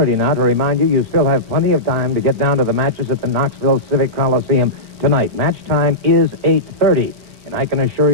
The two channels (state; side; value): late; left; 4.5 ms